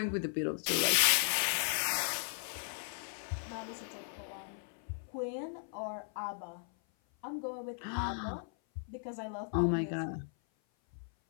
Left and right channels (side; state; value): right; silent; 54 dB below the other